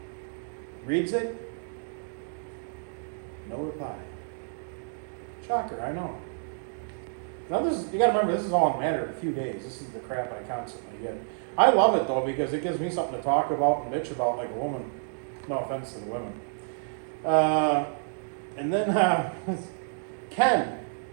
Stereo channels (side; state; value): left; silent; digital silence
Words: Reads it. No reply. Shocker, I know. Now you gotta remember, this is all in a matter of a few days. This is the crap I constantly get. I love it though, because it gives me something to talk about and bitch about like a woman. No offense to the women. And then, Ken,